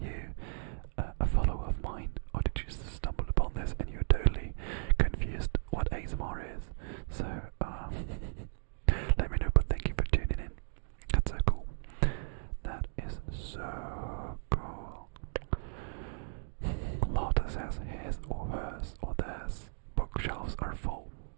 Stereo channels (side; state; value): left; silent; digital silence